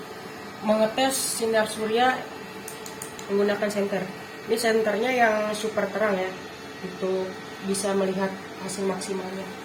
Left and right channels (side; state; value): both; identical; correlation 1.00